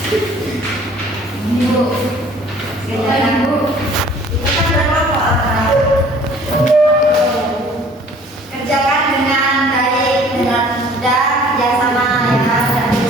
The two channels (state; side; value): normal; both; correlation 0.53